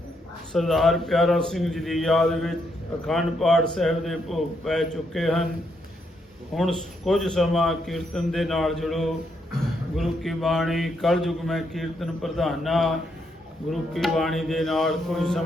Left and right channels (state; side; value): normal; both; correlation 0.77